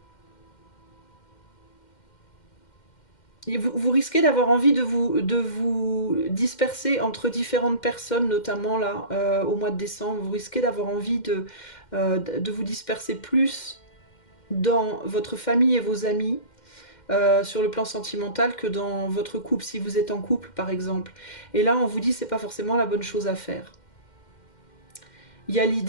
Vous risquez d'avoir envie de vous disperser entre différentes personnes, notamment là, au mois de décembre. Vous risquez d'avoir envie de vous disperser plus dans votre famille et vos amis, sur le plan sentimental, que dans votre couple, si vous êtes en couple par exemple. Et là on vous dit c'est pas forcément la bonne chose à faire. Il y a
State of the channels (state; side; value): late; right; 2.1 ms